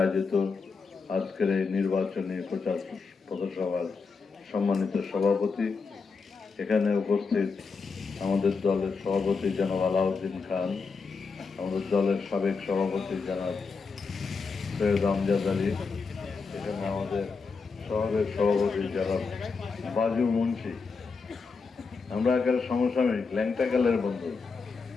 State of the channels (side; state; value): right; quieter; 4.8 dB